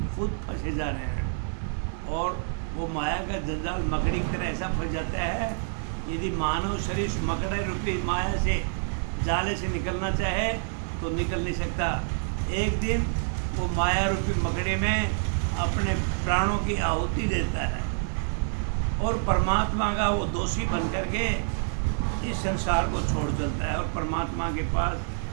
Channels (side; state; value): left; silent; 60 dB below the other